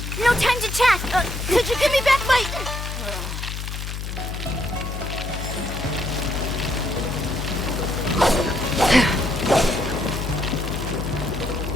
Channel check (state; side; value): noise; left; hum, 6 dB below the sound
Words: no time to chat. Could you give me back my...